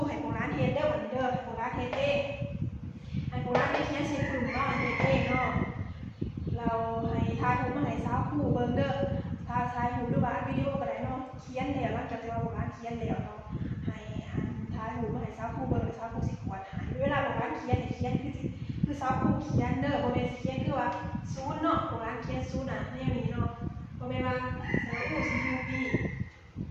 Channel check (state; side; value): identical; both; correlation 1.00